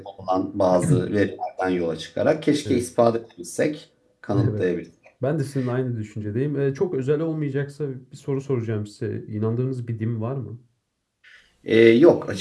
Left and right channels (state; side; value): identical; both; correlation 1.00